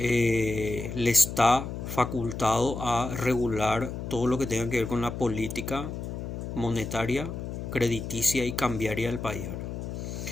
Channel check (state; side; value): noise; left; hum, 6 dB below the sound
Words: está facultado a regular todo lo que tenga que ver con la política monetaria, crediticia y cambiaria del país, ¿verdad?